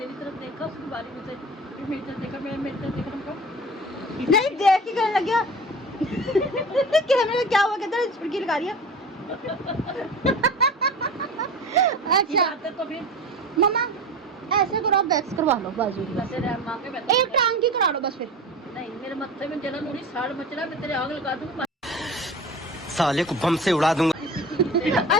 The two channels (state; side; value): normal; both; correlation 0.34